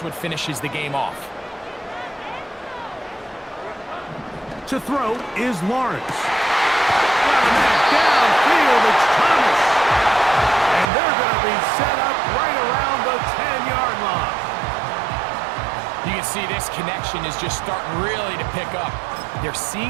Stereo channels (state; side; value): drops out; left; at 10.9 s